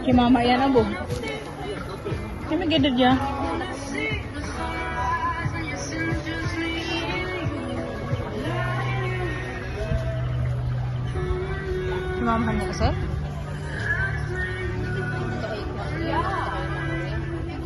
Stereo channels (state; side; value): identical; both; correlation 1.00